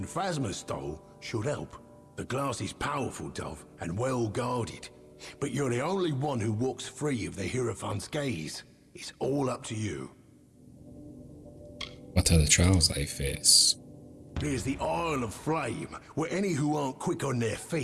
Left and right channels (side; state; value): both; identical; correlation 1.00